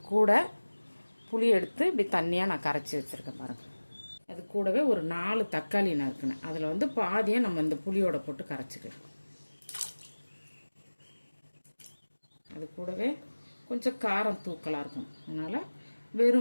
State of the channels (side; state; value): both; inverted; correlation -1.00